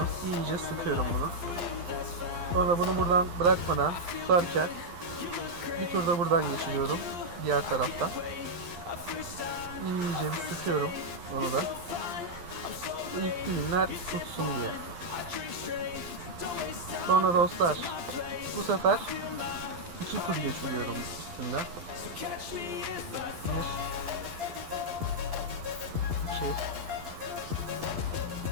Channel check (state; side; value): late; left; 12 ms